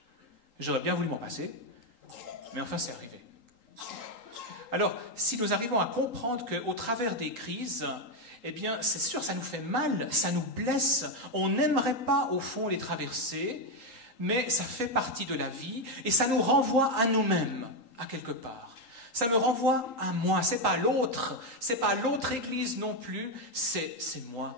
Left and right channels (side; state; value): right; late; 3.8 ms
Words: J'aurais bien voulu m'en passer, mais enfin, c'est arrivé. Alors, si nous arrivons à comprendre qu'au travers des crises, eh bien, c'est sûr, ça nous fait mal, ça nous blesse. On n'aimerait pas, au fond, les traverser, mais ça fait partie de la vie, et ça nous renvoie à nous-mêmes, à quelque part. Ça me renvoie à moi, c'est pas l'autre église non plus, c'est